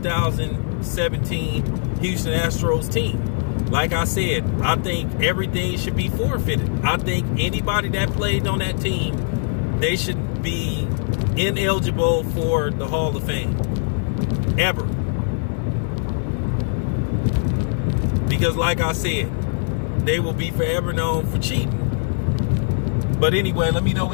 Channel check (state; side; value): silent; right; 64 dB below the other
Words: Houston Astros team? Like I said, I think everything should be forfeited. I think anybody that played on that team, they should be ineligible for the Hall of Fame. Ever. Because like I said, they will be forever known for cheating. But anyway, let me know